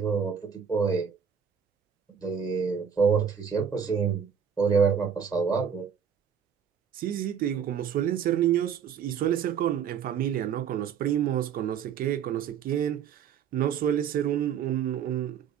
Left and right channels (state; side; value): quieter; left; 7.5 dB